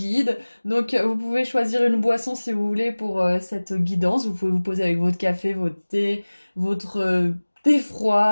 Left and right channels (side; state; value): both; inverted; correlation -1.00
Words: Donc vous pouvez choisir une boisson si vous voulez pour cette guidance. Vous pouvez vous poser avec votre café, votre thé, votre thé